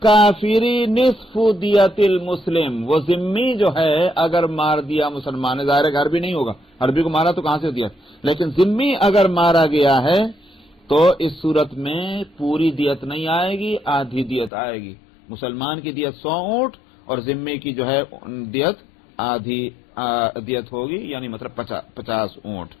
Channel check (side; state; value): right; drops out; at 14.5 s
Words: نصف دیت المسلم، وہ ذمی جو ہے اگر مار دیا مسلمان، ظاہر ہے عربی نہیں ہوگا، عربی کو مارا تو کہاں سے دیت، لیکن ذمی اگر مارا گیا ہے تو اس صورت میں پوری دیت نہیں آئے گی، آدھی دیت آئے گی. مسلمان کی دیت 100 اونٹ اور ذمی کی جو ہے دیت آدھی دیت ہوگی، یعنی مطلب 50 اونٹ.